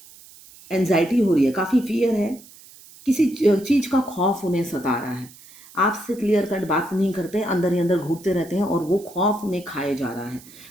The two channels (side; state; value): right; noise; hiss, 22 dB below the sound